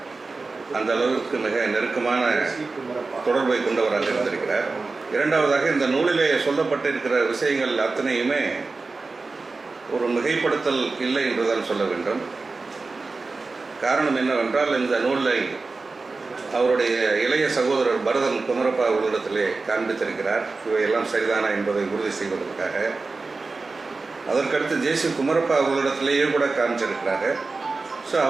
அந்த அளவுக்கு மிக நெருக்கமான தொடர்பை கொண்டவராக இருந்திருக்கிறார். இரண்டாவதாக, இந்த நூலிலே சொல்லப்பட்டிருக்கிற விஷயங்கள் அத்தனையுமே ஒரு மிகைப்படுத்தல் இல்லை என்றுதான் சொல்ல வேண்டும். காரணம் என்னவென்றால், இந்த நூலை அவருடைய இளைய சகோதரர் பரதன் குமரப்பா அவர்களிடத்திலே காண்பித்திருக்கிறார். இவையெல்லாம் சரிதானா என்பதை உறுதி செய்வதற்காக. அதற்கடுத்து ஜே.சி. குமரப்பா அவர்களிடத்திலேயே கூட காமிச்சிருக்கிறாங்க. ஸோ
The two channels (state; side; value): quieter; left; 3.9 dB